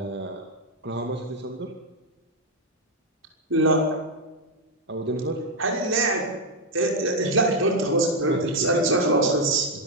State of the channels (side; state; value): both; normal; correlation 0.02